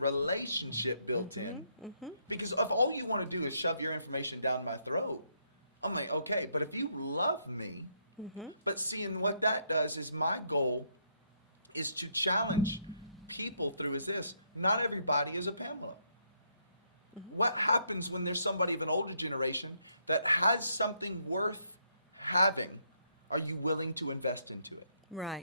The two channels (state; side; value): inverted; both; correlation -0.74